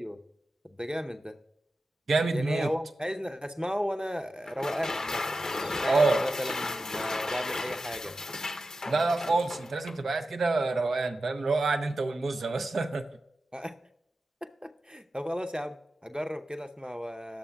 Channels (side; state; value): both; normal; correlation 0.92